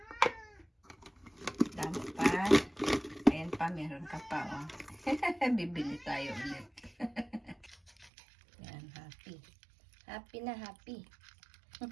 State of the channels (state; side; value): drops out; left; at 8.1 s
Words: Dami pa. Ayan pa, meron ka pa, oh. Bibili tayo ulit. Yan, happy. Happy na happy.